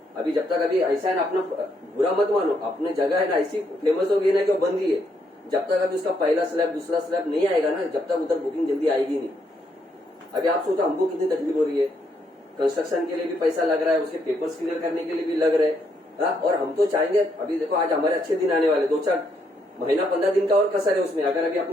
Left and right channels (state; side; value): normal; both; correlation 0.75